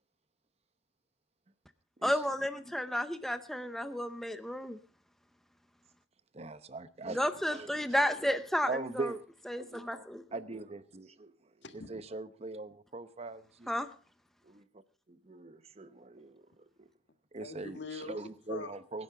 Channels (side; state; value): both; normal; correlation 0.82